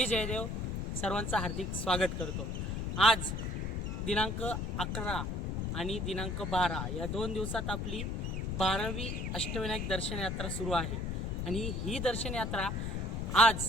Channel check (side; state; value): left; noise; rumble, 2 dB below the sound